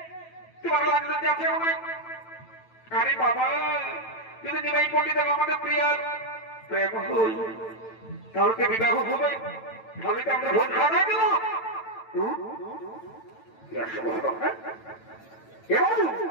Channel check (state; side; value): late; right; 9.0 ms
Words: তোমার লাগলে আছে আমায়? আরে বাবা, কিন্তু নিমাই পণ্ডিত আমাদের প্রিয়ার প্রেম হই, তাহলে তো বিবাহ হবে, তাহলে তো আমরা ভোট খাওয়া দেব।